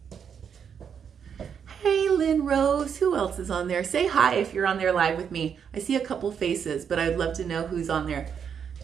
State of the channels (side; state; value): left; quieter; 7.5 dB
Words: Hey, Lynn Rose, who else is on there? Say hi if you're on there live with me. I see a couple faces, but I'd love to know who's on there.